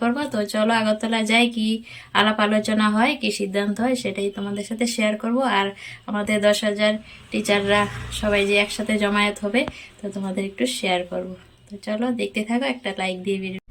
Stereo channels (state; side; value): identical; both; correlation 1.00